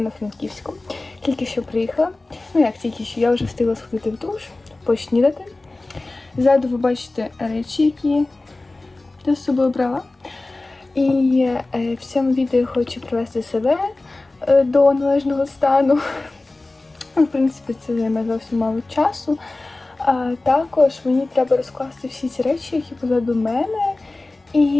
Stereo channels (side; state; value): right; quieter; 3.1 dB